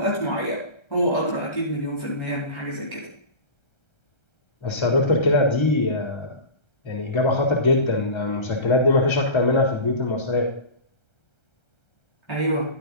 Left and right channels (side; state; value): right; late; 1.3 ms